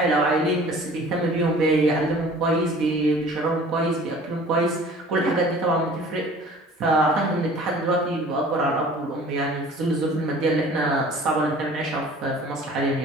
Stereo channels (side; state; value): both; normal; correlation 0.47